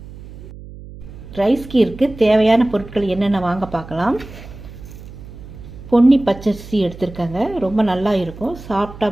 ரைஸ் கீருக்கு தேவையான பொருட்கள் என்னென்ன வாங்க பார்க்கலாம். பொன்னி பச்சரிசி எடுத்துருக்கேங்க. ரொம்ப நல்லா இருக்கும்,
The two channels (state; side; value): noise; right; hum, 15 dB below the sound